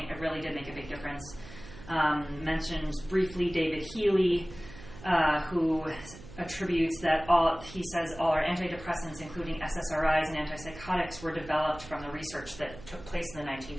it really did make a big difference. Mentions briefly David Healy, who attributes that all our antidepressants, including SSRIs and antipsychotics, were developed from the research that took place in the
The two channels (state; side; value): noise; right; hum, 16 dB below the sound